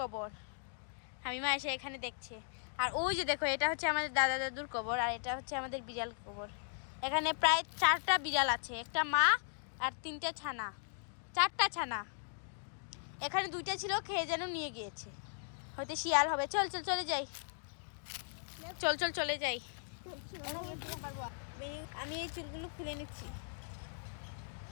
হামিমা এসে এখানে দেখছে। আর ওই যে দেখো এটা হচ্ছে আমাদের দাদা দাদুর কবর। আর এটা হচ্ছে আমাদের বিড়াল কবর। এখানে প্রায় 4টা বিড়াল আছে, একটা মা আর 3টা ছানা, 4টা ছানা। এখানে 2টা ছিল, খেয়ে যেন নিয়ে গিয়েছে, হয়তো শিয়াল হবে। চল চল চলে যাই, চল চল চলে যাই। আমি এই চুলগুলো খুলে নিচ্ছি।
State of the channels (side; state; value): right; silent; digital silence